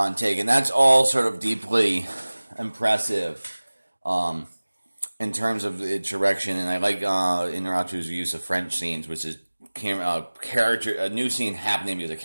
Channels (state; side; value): inverted; both; correlation -1.00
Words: and that's all sort of deeply impressive. In terms of its direction, and I like Inarritu's use of French scenes, which is a new scene happening because a